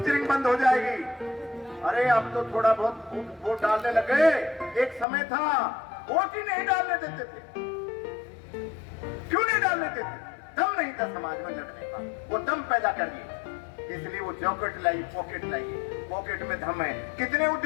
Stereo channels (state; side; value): drops out; right; at 5.1 s